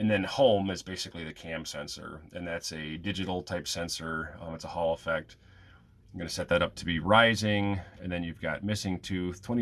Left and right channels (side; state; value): both; identical; correlation 1.00